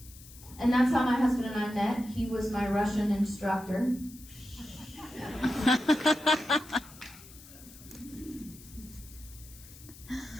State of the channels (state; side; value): noise; left; hiss, 19 dB below the sound